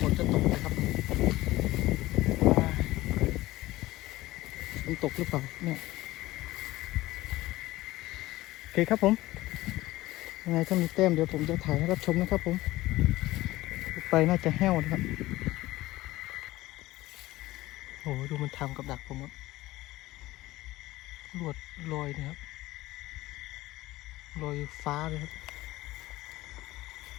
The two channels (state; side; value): quieter; right; 17.7 dB